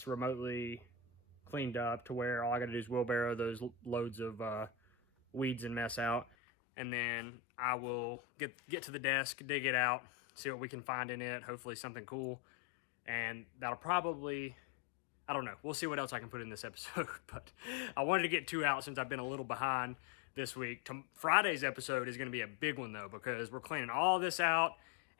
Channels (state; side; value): drops out; right; at 6.2 s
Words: remotely cleaned up to where all I gotta do is wheelbarrow those loads of weeds and mess out. And then I will get to the desk, dig it out, see what we can find in it, hopefully something cool. And that'll probably, I don't know, we'll see what else I can put in this episode. But I wanted to get 2 out since I've been a little behind this week. Friday's episode is gonna be a big one though, because we're cleaning all this out